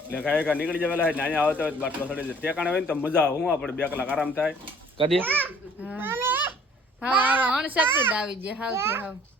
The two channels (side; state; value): both; normal; correlation 0.55